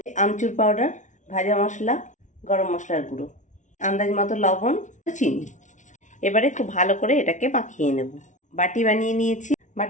আমচুর পাউডার, ভাজা মশলা, গরম মশলার গুঁড়ো, আন্দাজ মতো লবণ, চিনি। এবারে খুব ভালো করে এটাকে মাখিয়ে নেব। বাটি বানিয়ে নিয়েছি,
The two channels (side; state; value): right; late; 0.36 ms